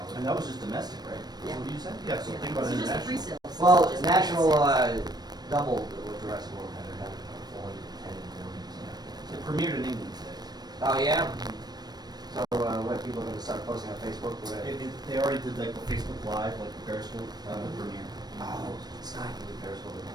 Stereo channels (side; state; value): left; late; 0.19 ms